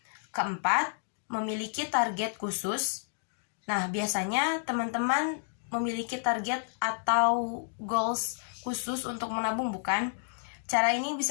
Keempat, memiliki target khusus. Nah, biasanya teman-teman memiliki target atau goals khusus untuk menabung, bukan? Cara ini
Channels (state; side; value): silent; right; digital silence